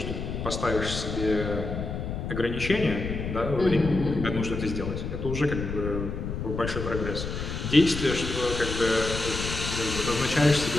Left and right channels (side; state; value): left; noise; rumble, 5 dB below the sound